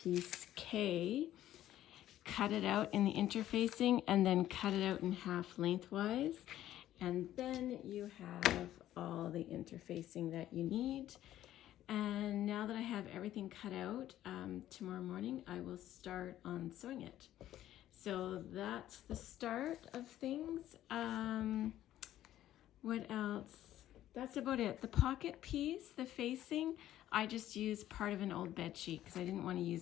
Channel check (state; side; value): quieter; right; 12.9 dB